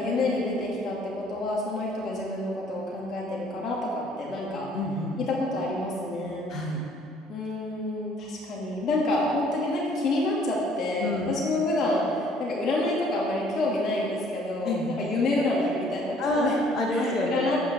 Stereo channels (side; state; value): both; normal; correlation 0.60